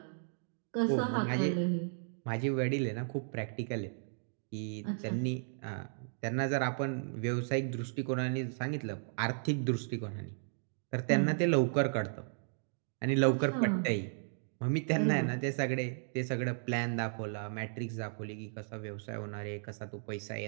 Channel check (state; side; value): silent; left; digital silence